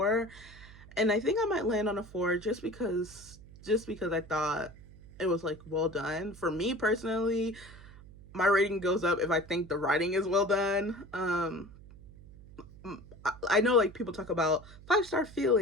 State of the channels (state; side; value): noise; right; hum, 19 dB below the sound